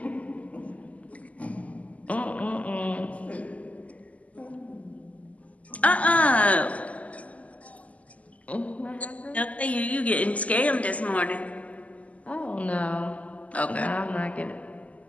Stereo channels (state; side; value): late; right; 0.070 ms